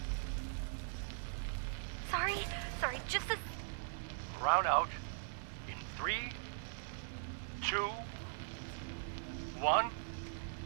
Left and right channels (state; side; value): silent; left; digital silence